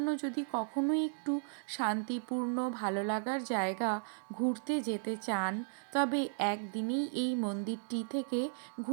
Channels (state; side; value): silent; left; 54 dB below the other